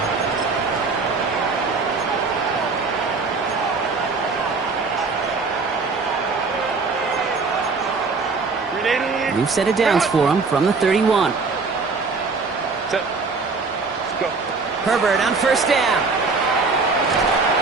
line. We've set it downs for him from the 31. Let's go. Herbert on 1st down.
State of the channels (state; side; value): quieter; left; 4.3 dB